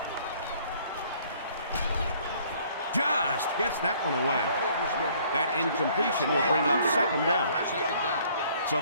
Just gets that one away. That incompletion will bring up second down. So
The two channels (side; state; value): both; inverted; correlation -0.59